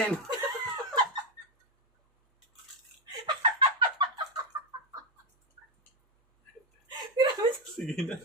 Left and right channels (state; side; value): normal; both; correlation 0.07